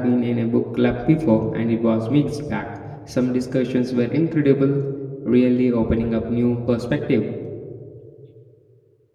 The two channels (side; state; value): both; identical; correlation 1.00